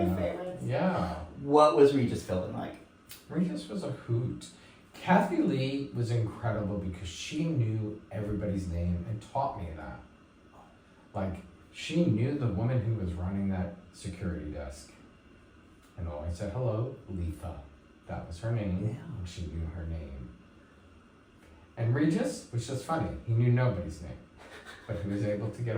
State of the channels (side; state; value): both; identical; correlation 1.00